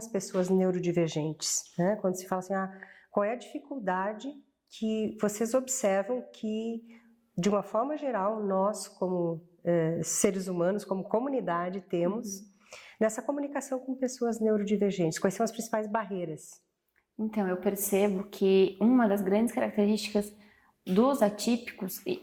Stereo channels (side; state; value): both; identical; correlation 1.00